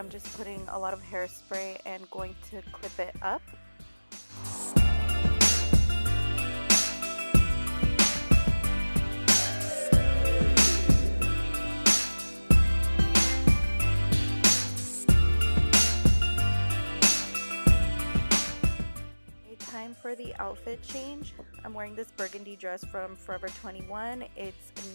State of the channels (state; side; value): inverted; both; correlation -1.00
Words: just putting a lot of hairspray and going to clip it up. Time for the outfit change. I'm wearing this burgundy dress from Forever 21. It's